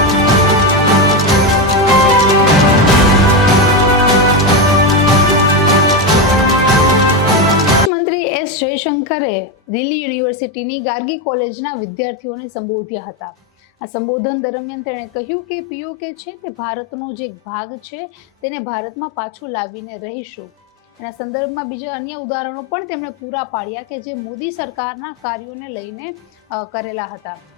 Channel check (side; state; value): both; normal; correlation 0.12